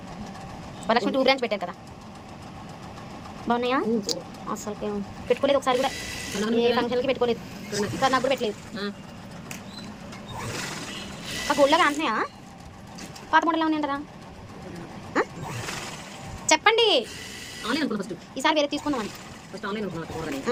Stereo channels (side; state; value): both; identical; correlation 1.00